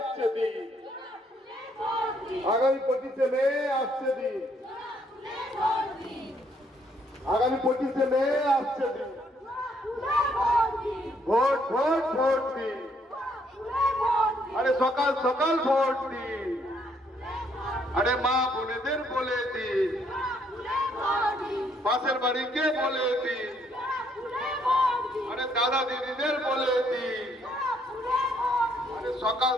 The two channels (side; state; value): both; normal; correlation 0.69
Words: দিন, আগামী 25শে মে আসছে দিন, আগামী 25শে মে আসছে দিন। ভোট ভোট ভোট দিন, আরে সকাল সকাল ভোট দিন, আরে মা বোনেদের বলে দিন, পাশের বাড়িকে বলে দিন, আরে দাদা দিদিদের বলে দিন, আরে সকাল